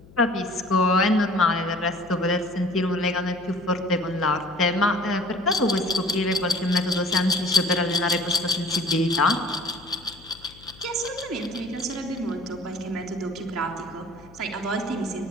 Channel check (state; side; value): noise; left; hum, 22 dB below the sound